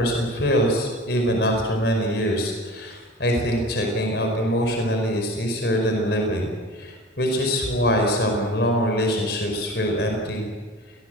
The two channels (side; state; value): both; normal; correlation 0.38